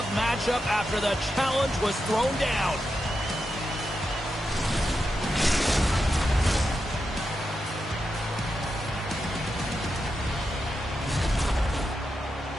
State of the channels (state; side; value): normal; both; correlation 0.87